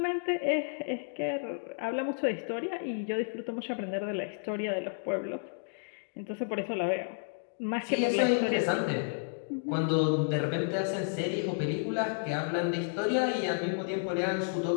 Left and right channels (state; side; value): silent; right; digital silence